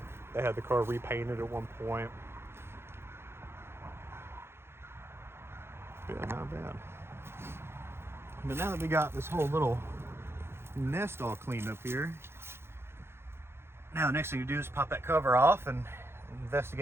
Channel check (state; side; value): late; left; 0.12 ms